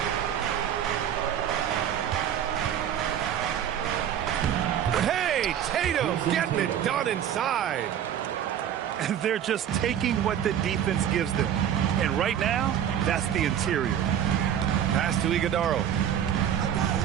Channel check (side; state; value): left; quieter; 9.7 dB